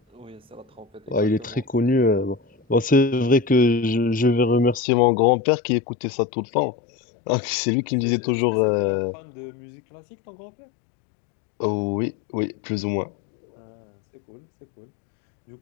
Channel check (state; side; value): drops out; right; at 4.8 s